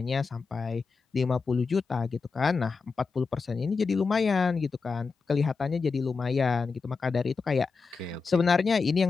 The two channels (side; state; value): right; quieter; 4.7 dB